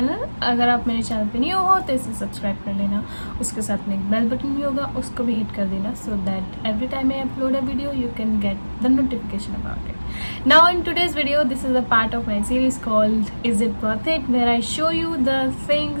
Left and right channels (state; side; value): inverted; both; correlation -1.00